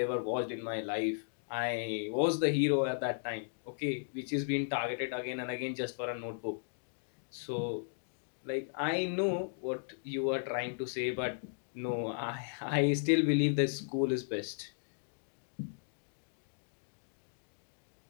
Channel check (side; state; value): right; silent; digital silence